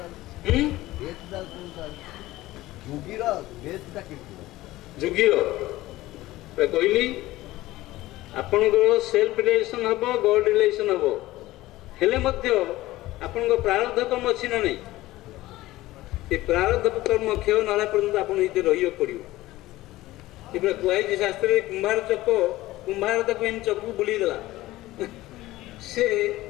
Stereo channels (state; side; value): quieter; right; 17.2 dB